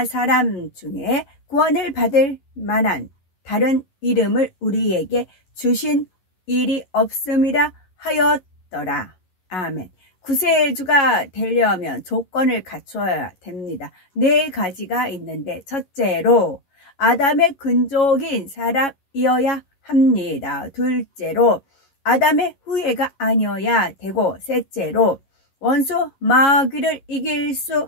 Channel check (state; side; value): late; right; 11 ms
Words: 사람 중에 구원을 받을 만한 다른 이름을 우리에게 주신 일이 없음이라 하였더라. 아멘. 구세주가 되려면 조건을 갖춰야 됩니다. 4가지가 있는데 첫째로 아담의 근족인 사람이어야 합니다. 둘째로 아담의 후예가 아니어야 되고 셋째로 원수 마귀를 이길 수